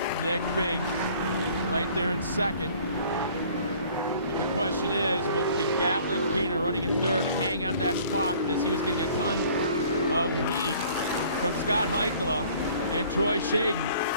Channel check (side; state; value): both; inverted; correlation -0.53